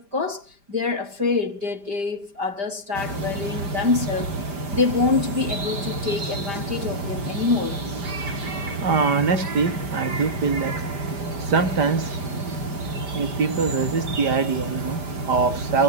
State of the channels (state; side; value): late; left; 5.0 ms